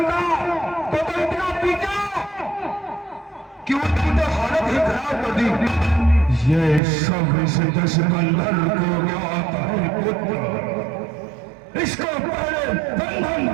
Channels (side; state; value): left; drops out; at 6.8 s